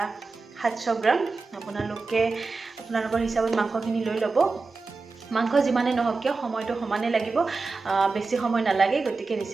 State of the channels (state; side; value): quieter; left; 4.0 dB